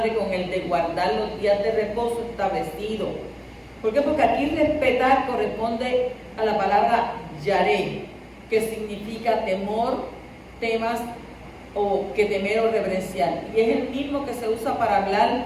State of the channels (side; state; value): both; identical; correlation 1.00